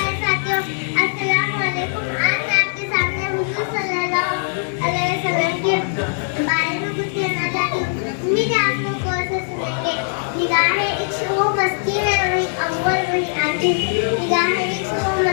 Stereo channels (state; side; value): silent; right; digital silence